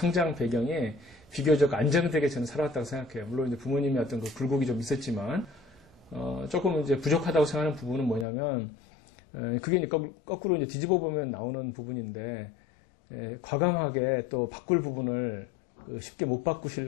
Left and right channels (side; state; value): right; drops out; at 8.2 s